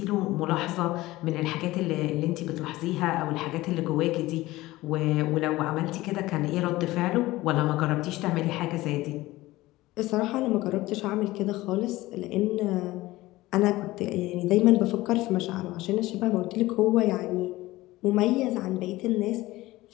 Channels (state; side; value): quieter; right; 18.2 dB